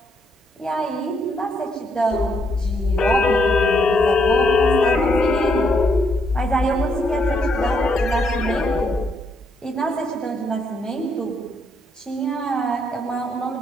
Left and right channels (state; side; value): normal; both; correlation 0.75